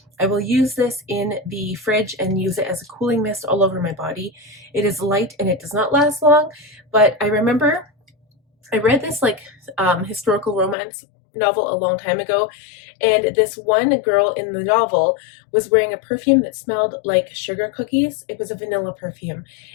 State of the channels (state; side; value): drops out; right; at 10.8 s